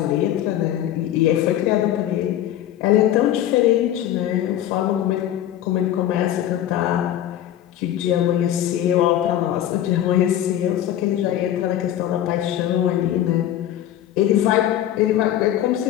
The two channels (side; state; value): right; quieter; 11.9 dB